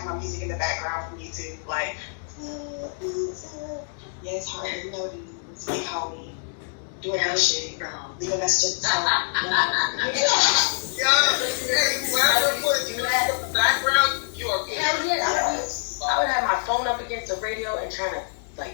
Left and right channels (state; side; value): silent; right; digital silence